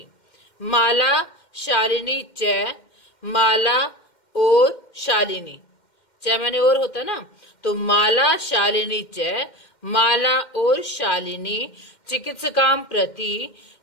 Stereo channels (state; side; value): late; right; 2.1 ms